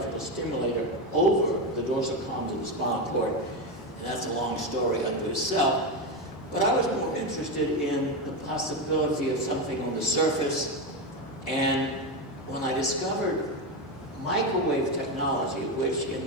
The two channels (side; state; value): both; normal; correlation 0.13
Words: stimulator over the dorsal columns of the spinal cord, and that's a long story unto itself. But I was more interested in the possibility of something on the surface, and when I discovered microwave technology, which